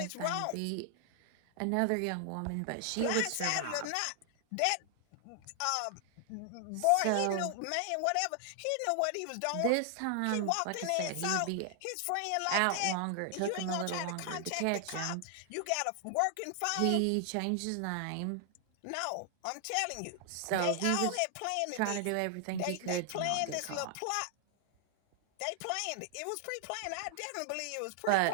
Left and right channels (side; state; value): both; different; correlation 0.00